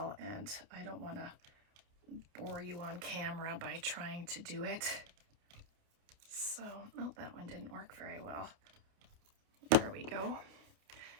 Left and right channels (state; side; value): late; left; 29 ms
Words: and I don't want to bore you on camera by trying to do it. So, oh, that one didn't work very well. There we go.